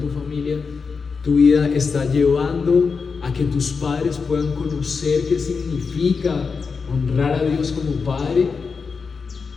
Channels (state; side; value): quieter; right; 5.1 dB